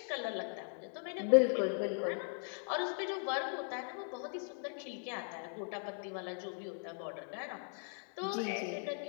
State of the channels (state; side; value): silent; right; 52 dB below the other